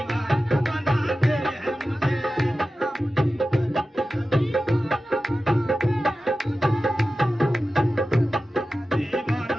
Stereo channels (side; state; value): both; normal; correlation 0.94